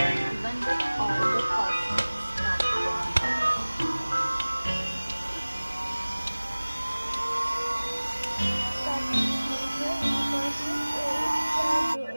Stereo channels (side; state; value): both; inverted; correlation -1.00